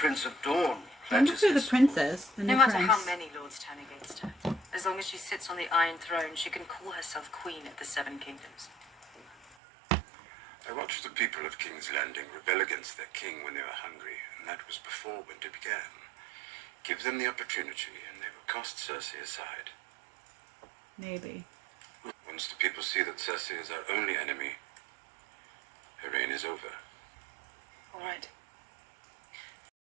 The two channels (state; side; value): drops out; left; at 9.6 s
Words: of Dawn I wonder who the princess, the No new matter prince. how many lords turn against her, as long as she sits on the Iron Throne, she can call herself Queen of the Seven Kingdoms. I watched the people of King's Landing rebel against their king when they were hungry, and that was before winter began. Give them the opportunity, and they will cast Cersei aside. Maybe. Once the people see that Cersei is our only enemy, her reign is over. All right.